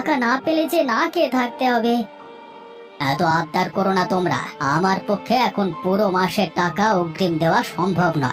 না পেলে যে না খেয়ে থাকতে হবে। এত আবদার করো না তোমরা, আমার পক্ষে এখন পুরো মাসের টাকা অগ্রিম দেওয়া সম্ভব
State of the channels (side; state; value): both; identical; correlation 1.00